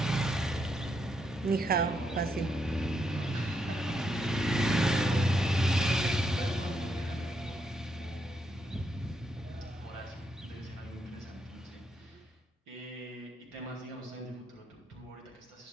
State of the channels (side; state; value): both; normal; correlation 0.78